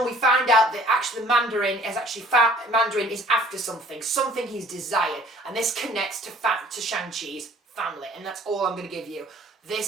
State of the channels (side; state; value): both; normal; correlation 0.54